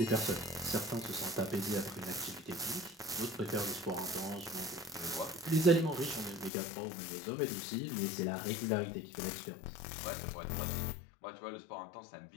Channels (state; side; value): drops out; right; at 6.5 s